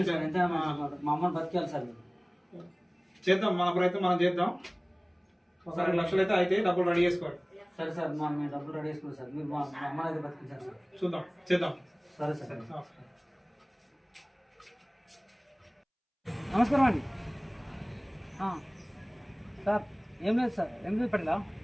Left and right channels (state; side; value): identical; both; correlation 1.00